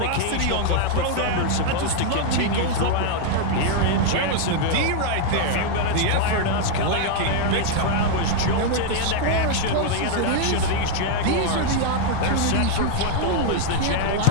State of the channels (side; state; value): both; different; correlation 0.00